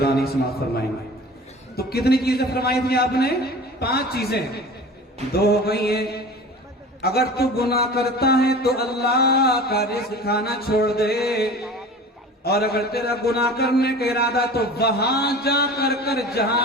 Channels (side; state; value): both; normal; correlation 0.39